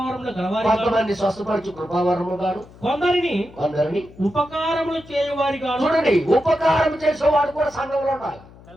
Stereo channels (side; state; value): left; noise; hum, 22 dB below the sound